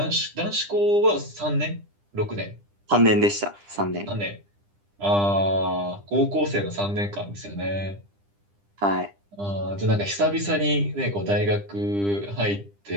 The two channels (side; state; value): left; late; 10 ms